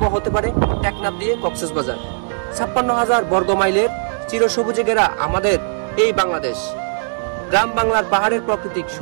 হতে পারে টেকনাফ দিয়ে কক্সবাজার। ৫৬,০০০ বর্গ মাইলের চিরসবুজে ঘেরা আমাদের এই বাংলাদেশ। গ্রাম বাংলার পাহাড়ের প্রাকৃতিক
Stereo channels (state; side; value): silent; left; digital silence